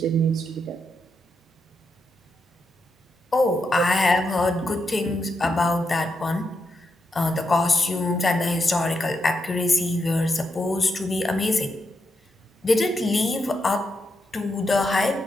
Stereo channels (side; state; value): both; normal; correlation 0.83